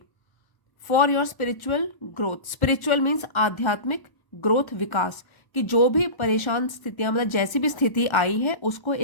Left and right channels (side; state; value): right; late; 1.1 ms